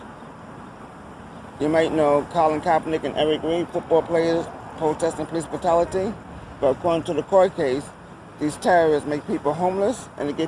You might know Colin Kaepernick and Eric Reid, football players protesting police brutality. But according to the court case, these terrorists make people homeless and they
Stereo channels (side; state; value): both; identical; correlation 1.00